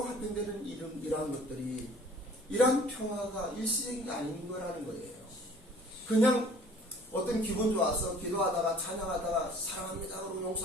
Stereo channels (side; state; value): both; normal; correlation 0.51